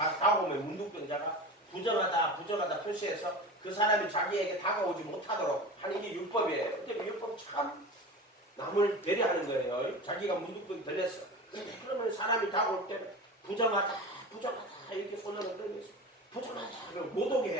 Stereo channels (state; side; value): normal; both; correlation 0.31